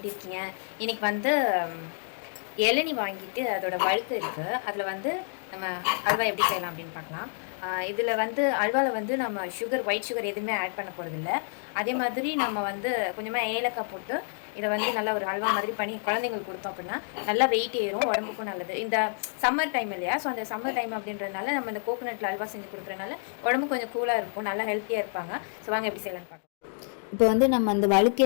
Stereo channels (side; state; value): right; silent; 59 dB below the other